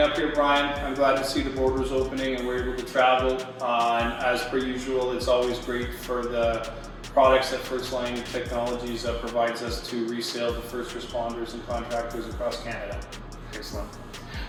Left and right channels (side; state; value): both; identical; correlation 1.00